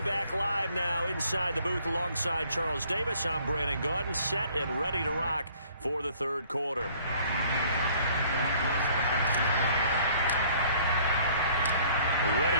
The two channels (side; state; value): both; inverted; correlation -0.57